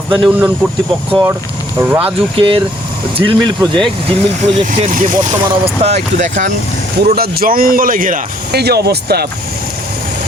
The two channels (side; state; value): both; normal; correlation 0.63